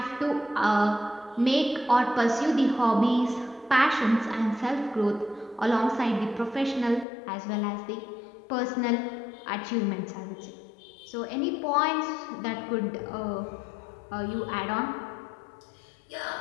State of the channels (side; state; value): right; drops out; at 7.1 s